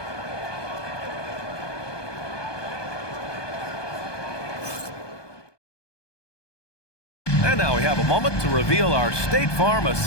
And now we have a moment to reveal our State Farm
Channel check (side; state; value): right; late; 1.2 ms